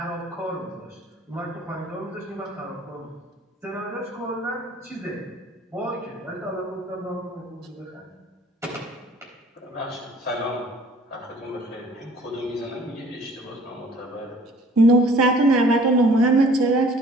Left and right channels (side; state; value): both; normal; correlation 0.53